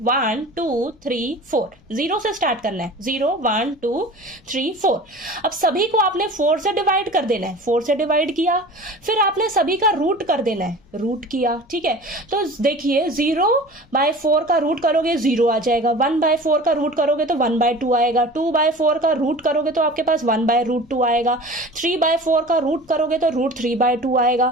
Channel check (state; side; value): noise; left; rumble, 29 dB below the sound